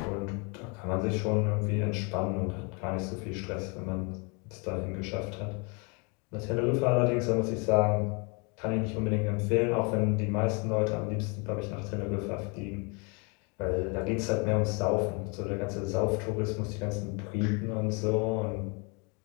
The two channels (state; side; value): quieter; right; 32.5 dB